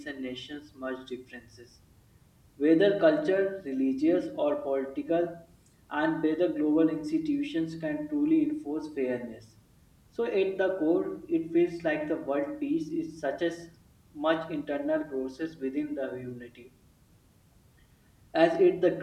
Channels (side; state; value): both; identical; correlation 1.00